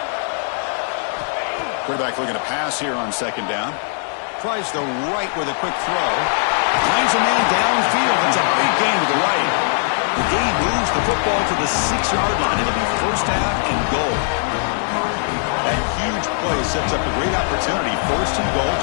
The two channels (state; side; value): silent; right; digital silence